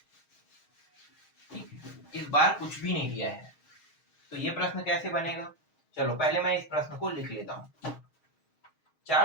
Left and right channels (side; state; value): right; late; 6.4 ms